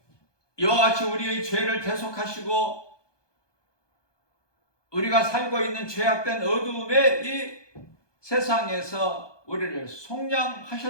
이와 같이 우리의 죄를 대속하시고 우리가 살고 있는 죄악된 어두움의 이 세상에서 우리를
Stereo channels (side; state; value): right; late; 1.2 ms